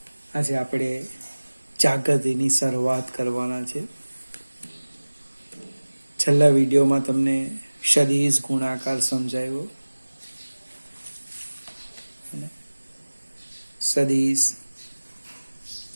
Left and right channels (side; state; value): both; inverted; correlation -1.00